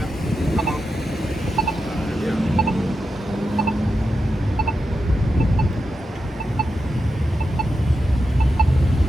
up. Come on. Yeah.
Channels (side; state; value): both; normal; correlation 0.88